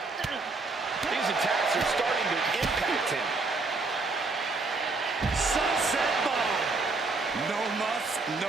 These attacks are starting to impact him. Sunset bomb. No muss,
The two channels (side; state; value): left; quieter; 3.7 dB